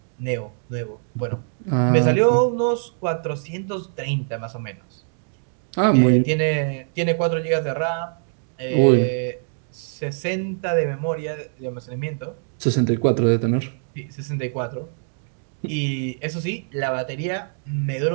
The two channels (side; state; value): left; silent; digital silence